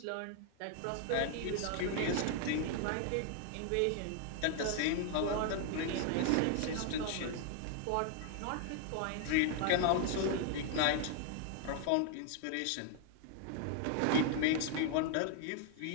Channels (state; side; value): different; both; correlation 0.00